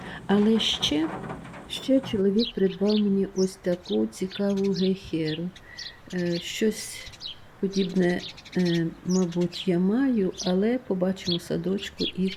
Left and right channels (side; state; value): both; identical; correlation 1.00